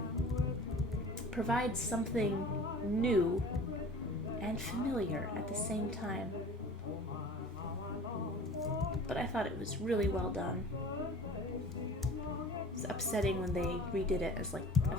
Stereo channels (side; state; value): both; normal; correlation 0.43